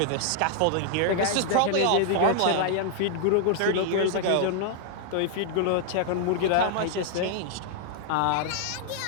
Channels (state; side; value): different; both; correlation 0.00